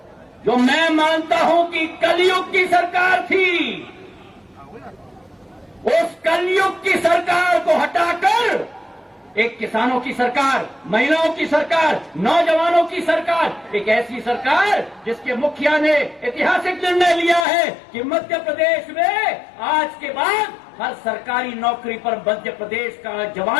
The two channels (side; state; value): right; drops out; at 17.4 s